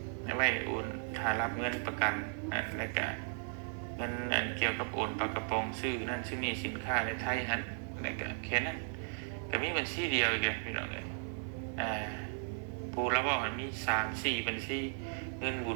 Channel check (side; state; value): left; silent; 54 dB below the other